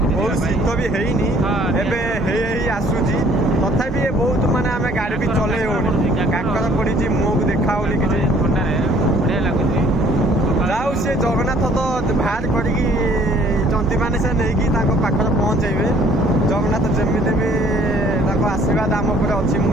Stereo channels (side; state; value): both; normal; correlation 0.58